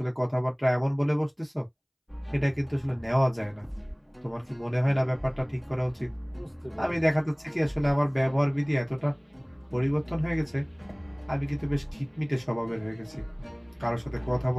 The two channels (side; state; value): both; identical; correlation 1.00